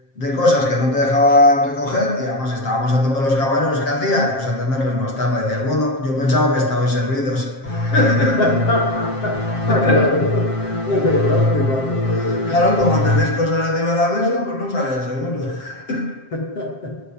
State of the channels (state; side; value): late; right; 7.5 ms